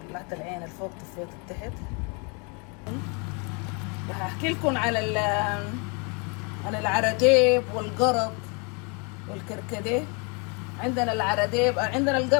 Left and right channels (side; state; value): right; quieter; 33.8 dB